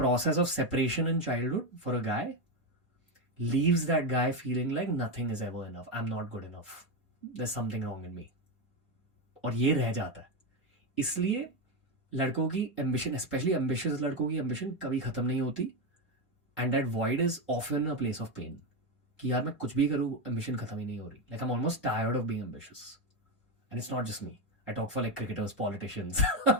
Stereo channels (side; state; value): both; normal; correlation 0.10